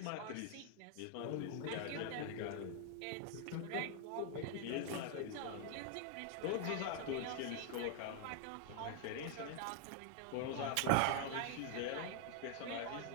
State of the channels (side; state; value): both; different; correlation 0.00